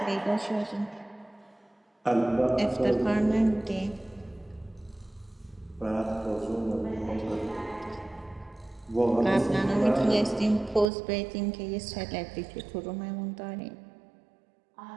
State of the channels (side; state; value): left; drops out; at 10.9 s